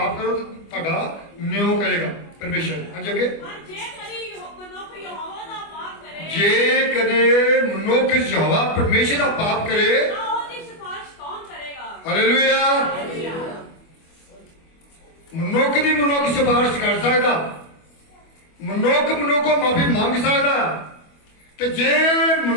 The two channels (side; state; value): right; late; 25 ms